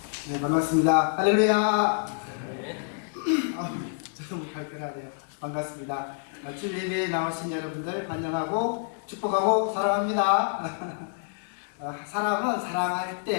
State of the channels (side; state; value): right; silent; digital silence